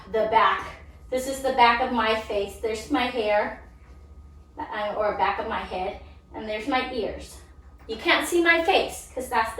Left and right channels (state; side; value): identical; both; correlation 1.00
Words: the back. This is the back of my face. There's my hair, or back of my head, and there's my ears. You can't see my face because that's